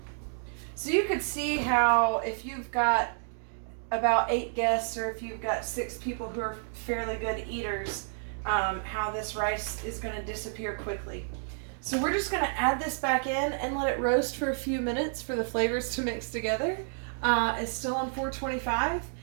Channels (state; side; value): silent; left; digital silence